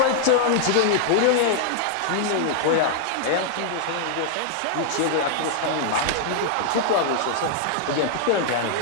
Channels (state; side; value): different; both; correlation -0.01